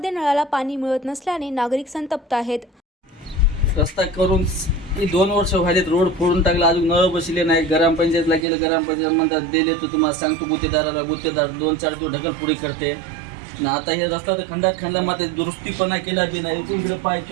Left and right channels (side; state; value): left; drops out; at 8.5 s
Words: नळाला पाणी मिळत नसल्याने नागरिक संतप्त आहेत. रस्ता करून 2 वर्ष व्हायलेत, रोड फोडून टाकला, अजून नळ बसले नाही. ग्रामपंचायतला गेलं, ग्रामपंचायत म्हणतात दिले तर तुम्हाला सांगतो गुत्तेदाराला, गुत्तेदार 2-4 दिवस ढकलपुडी करते ना. आता हे रस्ता तर खंडामध्ये दुरुस्तीपणा केला बी नाही. इकडे